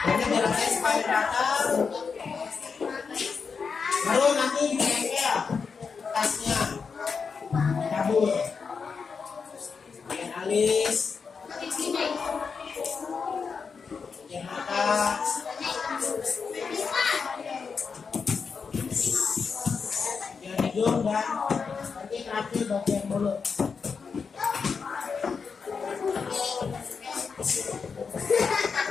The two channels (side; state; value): right; quieter; 5.5 dB